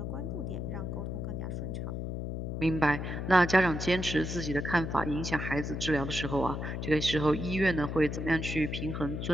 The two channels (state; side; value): noise; left; hum, 4 dB below the sound